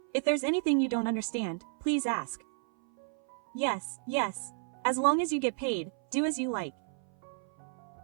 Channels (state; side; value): silent; left; 56 dB below the other